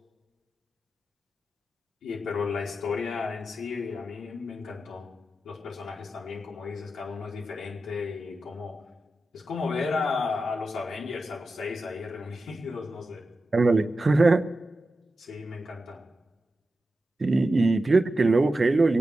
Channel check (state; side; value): normal; both; correlation 0.91